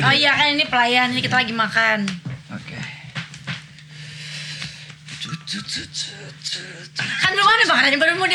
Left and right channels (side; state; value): both; identical; correlation 1.00